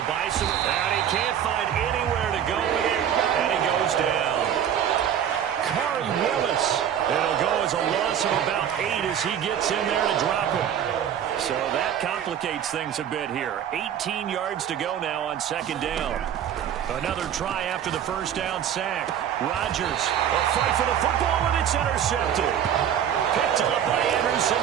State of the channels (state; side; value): quieter; left; 9.5 dB